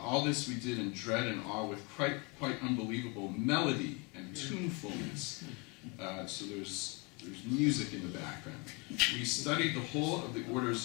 this we did in dread and awe with quite unbelievable melody and tunefulness. So there's music in the background. We studied the whole of the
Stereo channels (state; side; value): quieter; right; 28.0 dB